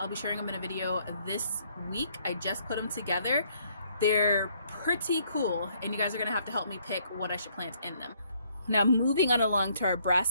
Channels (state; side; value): inverted; both; correlation -0.67